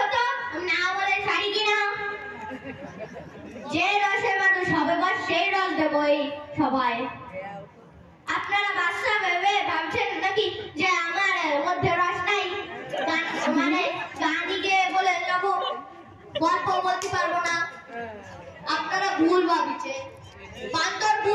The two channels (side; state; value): both; identical; correlation 1.00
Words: তো না বলে ছাড়ি কিনা। যে রসে মানুষ হবে বস সেই রস দেবো এই সবাই। আপনারা বাচ্চা ভেবে ভাবছেন নাকি যে আমার মধ্যে রস নাই, মানে গানিকে বলে যাবো গল্প বলতে পারবো না, আপনারা ভুল ভাবছেন। বান্দর